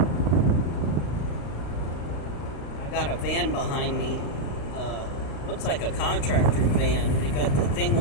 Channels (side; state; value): right; late; 35 ms